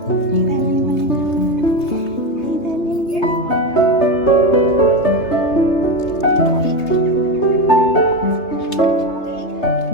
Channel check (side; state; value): right; late; 3.3 ms